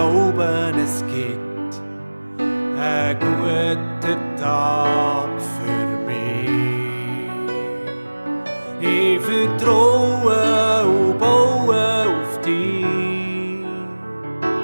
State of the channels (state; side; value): inverted; both; correlation -1.00